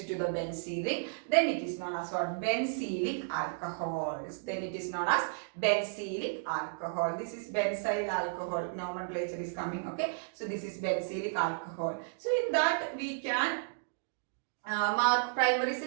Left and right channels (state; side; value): silent; left; digital silence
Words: the benzene ring. Then it is known as what? Benzylic alcohols. Then it is known as benzylic alcohol. This is benzyl alcohol. Nomenclature is coming. Okay, so this is benzylic alcohol. So in that we can mark primary,